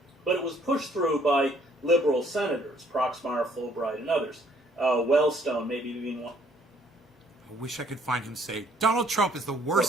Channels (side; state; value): both; normal; correlation 0.64